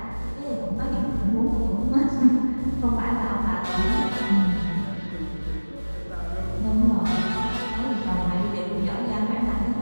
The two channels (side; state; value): both; inverted; correlation -1.00